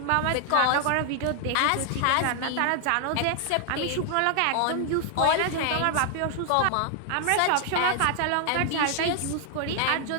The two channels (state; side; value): different; both; correlation 0.00